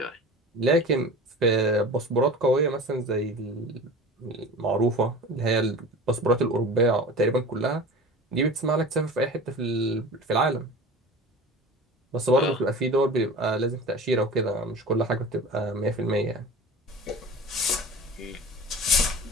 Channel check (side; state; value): both; normal; correlation 0.36